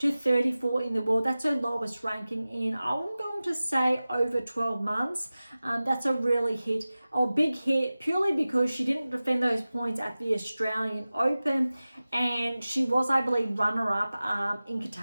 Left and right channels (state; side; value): inverted; both; correlation -0.97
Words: 34 in the world. That's her lowest ranking in, I'm going to say, over 12 months. That's a really big hit, purely because she didn't defend those points at the Australian Open, and she was, I believe, runner-up in